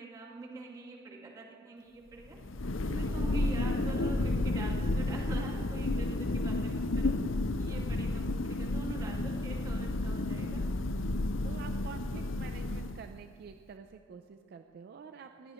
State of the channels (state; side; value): normal; both; correlation 0.71